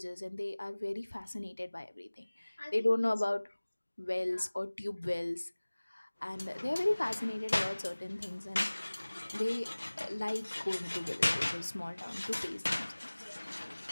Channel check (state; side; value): inverted; both; correlation -1.00